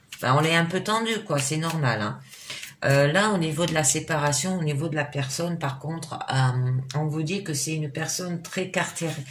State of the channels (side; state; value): both; identical; correlation 1.00